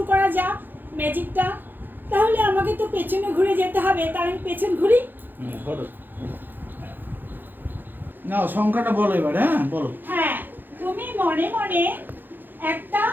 করা যাক ম্যাজিকটা। তাহলে আমাকে তো পেছনে ঘুরে যেতে হবে, তাই আমি পেছন ঘুরি। না, সংখ্যাটা বলো এবার। হ্যাঁ বলো। হ্যাঁ, তুমি মনে মনে একটা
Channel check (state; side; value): late; left; 0.091 ms